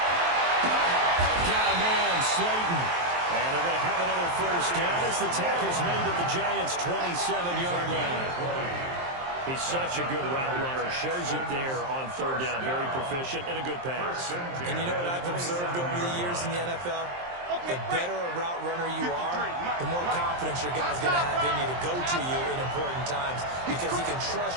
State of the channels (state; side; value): late; left; 23 ms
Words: Got a man, Slayton. And they're going to have another 1st down as the tackle's made at the Giants' 27-yard line. He's such a good route runner. Shows it there on 3rd down. Very proficient and a good pass. And you know what I've observed over the years in the NFL? The better a route runner you are, the more confidence your guy's going to have in you to go to you in important times because he can trust